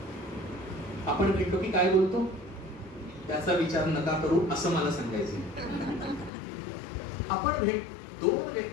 आपण भेटलो की काय बोलतो त्याचा विचार नका करू असं मला सांगायचं. आपण 2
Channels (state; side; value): drops out; right; at 6.3 s